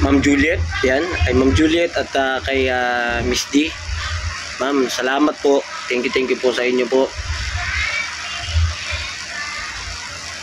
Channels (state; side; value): identical; both; correlation 1.00